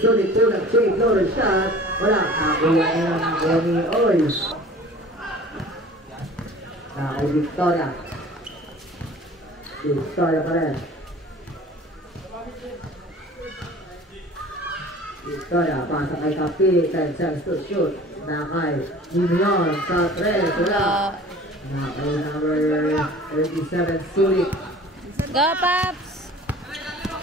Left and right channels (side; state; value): both; normal; correlation 0.44